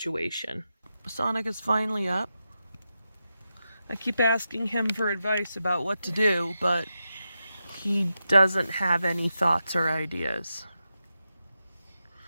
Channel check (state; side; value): inverted; both; correlation -0.89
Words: Sonic is finally up. I keep asking him for advice about what to do, but he doesn't have any thoughts or ideas.